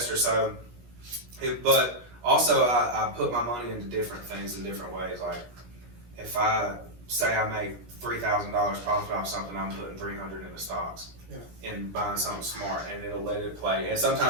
So, but also I put my money into different things in different ways. Like, if I say I make $3,000 profit off something, I'm putting $300 into stocks. And buying something smart, and it'll let it play. And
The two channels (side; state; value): left; late; 17 ms